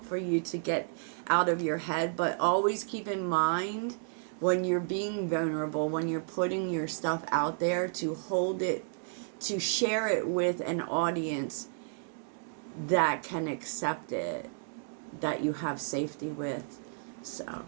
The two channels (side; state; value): left; silent; digital silence